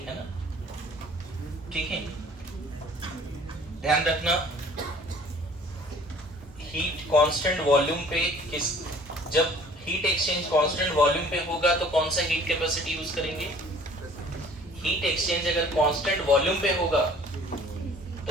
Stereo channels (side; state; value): both; normal; correlation 0.52